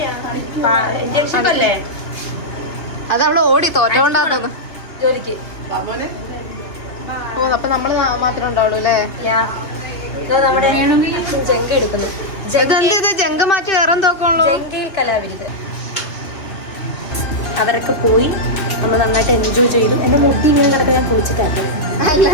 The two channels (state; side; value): late; right; 2.7 ms